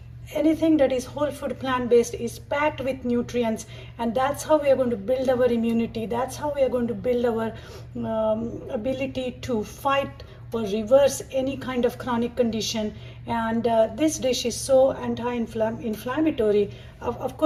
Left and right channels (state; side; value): identical; both; correlation 1.00